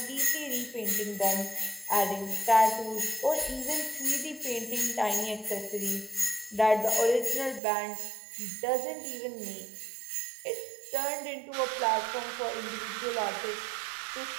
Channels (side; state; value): left; drops out; at 7.6 s